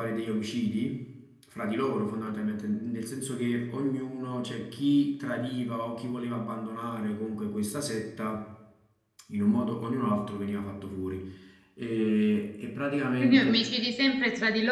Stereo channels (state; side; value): identical; both; correlation 1.00